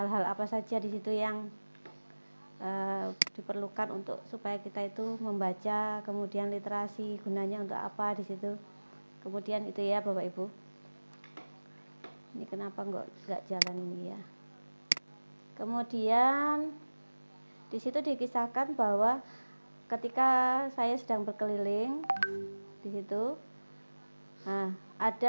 apa saja di situ yang diperlukan untuk supaya kita itu membaca, kemudian literasi gunanya untuk apa di situ. Kemudian itu ya Bapak Ibu. Ini kenapa nggak jalan ini ya. Kemudian di situ dikisahkan bahwa ketika saya sedang berkeliling di situ,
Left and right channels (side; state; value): both; inverted; correlation -1.00